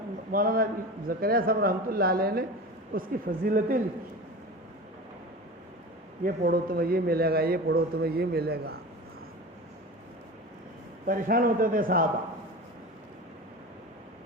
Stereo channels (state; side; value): normal; both; correlation 0.31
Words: مولانا زکریا صاحب رحمۃ اللہ علیہ نے اس کی فضیلتیں لکھی. یہ پڑھو تمہیں یہ ملے گا, یہ پڑھو تمہیں یہ ملے گا. پریشان ہوتے تھے صحابہ,